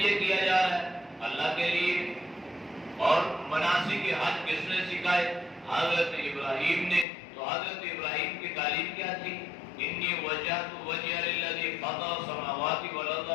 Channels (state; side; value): drops out; right; at 7.1 s